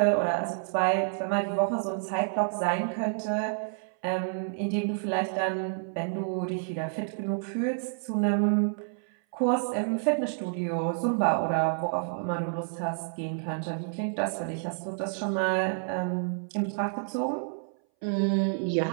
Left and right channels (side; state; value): left; silent; 59 dB below the other